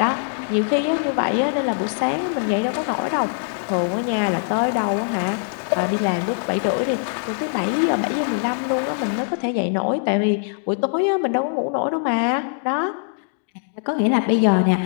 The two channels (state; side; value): silent; right; digital silence